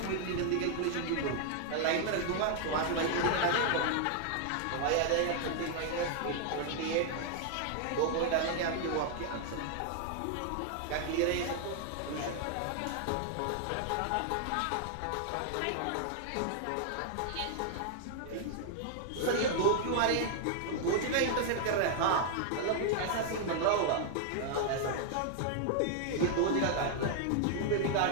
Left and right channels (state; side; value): different; both; correlation 0.00